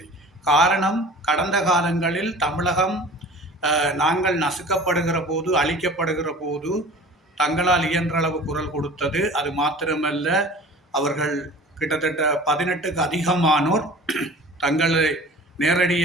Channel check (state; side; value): normal; both; correlation 0.42